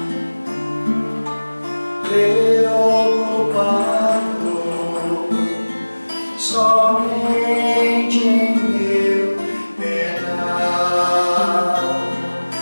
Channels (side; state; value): both; inverted; correlation -1.00